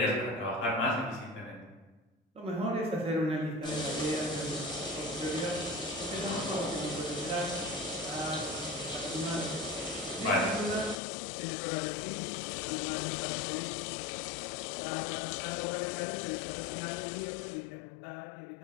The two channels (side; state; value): right; drops out; at 11.0 s